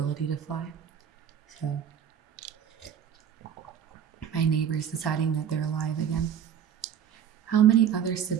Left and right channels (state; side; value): quieter; left; 8.9 dB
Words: to fly. So, my neighbor's deciding that they're alive again. How many other